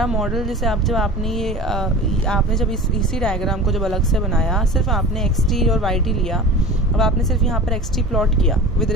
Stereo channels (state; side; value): normal; both; correlation 0.36